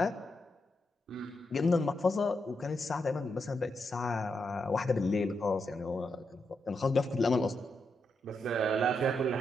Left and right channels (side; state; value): both; normal; correlation 0.83